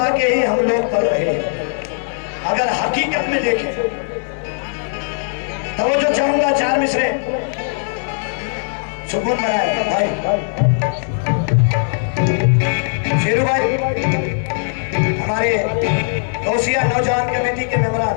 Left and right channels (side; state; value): right; silent; digital silence